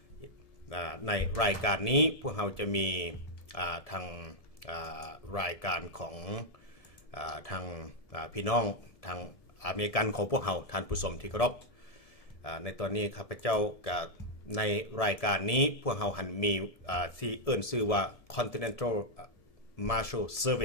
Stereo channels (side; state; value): right; late; 1.7 ms